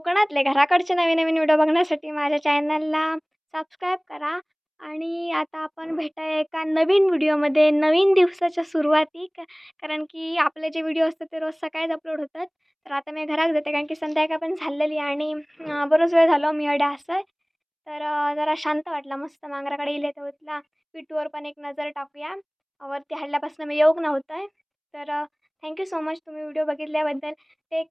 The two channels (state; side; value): identical; both; correlation 1.00